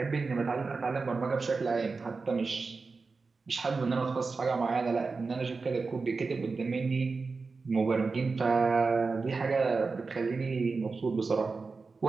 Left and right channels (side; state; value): left; quieter; 4.3 dB